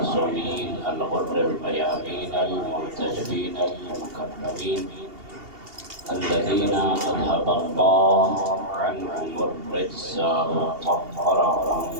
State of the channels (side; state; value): left; late; 2.8 ms